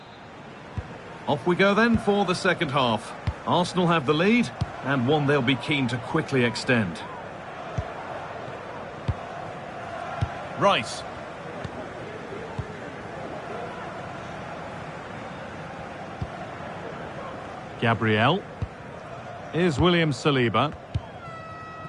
Off we go then for the second half. Arsenal have the lead, and one they'll be keen to quickly extend. Rice. Gabriel. Here's William Saliba.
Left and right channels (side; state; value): both; identical; correlation 1.00